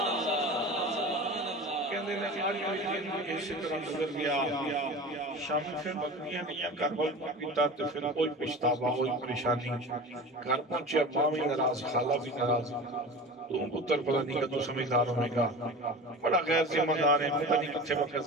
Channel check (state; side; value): normal; both; correlation 0.34